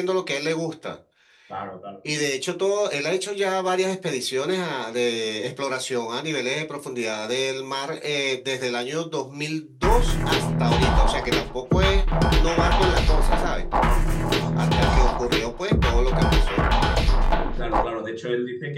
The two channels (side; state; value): both; identical; correlation 1.00